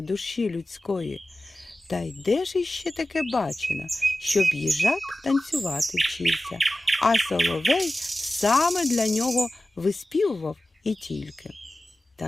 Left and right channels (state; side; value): normal; both; correlation 0.95